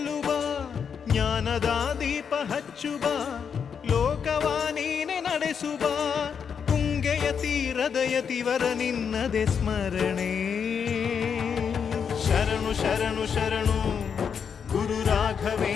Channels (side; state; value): right; quieter; 6.9 dB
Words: ಜ್ಞಾನದ ದೀಪ ಹಚ್ಚುವ ಲೋಕವ ನೀನೆ ನಡೆಸುವ ತುಂಗೆಯ ತೀರದ ಯತಿವರ ನಿನ್ನದೆ ಸ್ಮರಣೆ ಶರಣು ಶರಣು ಶರಣು ಗುರು